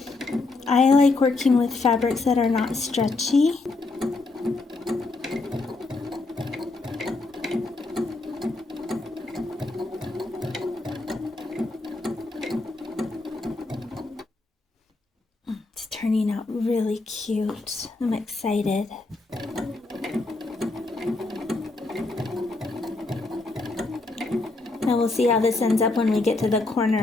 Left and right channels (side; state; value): right; quieter; 3.3 dB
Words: I like working with fabrics that are not stretchy. It's turning out really cute. I'm excited. Now we'll see how this ends up when we get to the